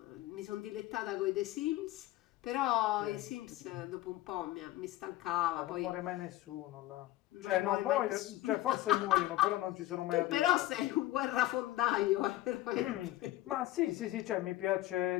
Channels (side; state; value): right; quieter; 16.0 dB